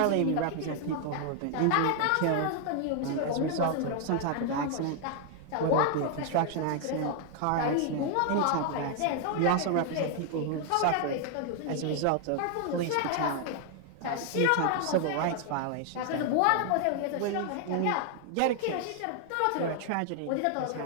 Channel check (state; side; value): different; both; correlation 0.00